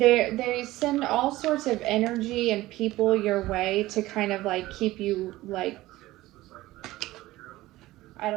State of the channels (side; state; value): left; quieter; 17.4 dB